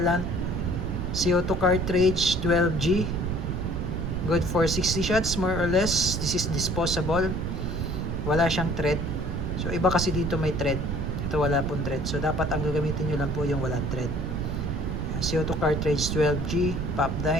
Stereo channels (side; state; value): right; noise; rumble, 2 dB below the sound